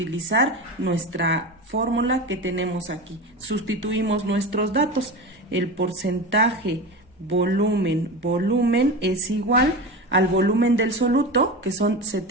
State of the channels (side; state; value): both; normal; correlation 0.25